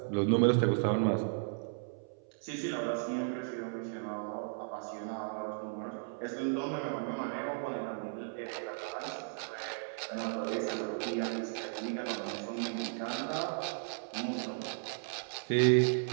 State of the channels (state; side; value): silent; left; 54 dB below the other